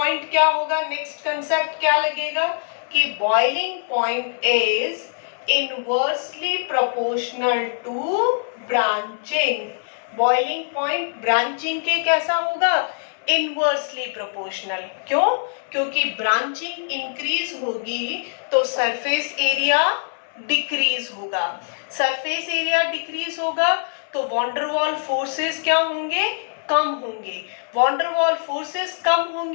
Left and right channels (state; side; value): silent; right; 64 dB below the other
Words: क्या होगा, नेक्स्ट कंसेप्ट क्या लगेगा कि boiling point is inversely proportional to branching. Boiling point branching के कैसा होगा? Inversely proportional. क्यों? क्योंकि ब्रांचिंग इंक्रीज होगी तो सरफेस एरिया डिक्रीज होगा। सरफेस एरिया डिक्रीज होगा तो वॉन्डरवॉल फोर्सेस क्या होंगे? कम होंगे। वॉन्डरवॉल फोर्सेस कम